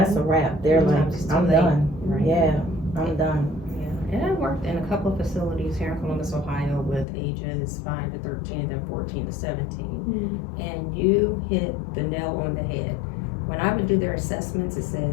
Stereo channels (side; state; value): right; drops out; at 7.1 s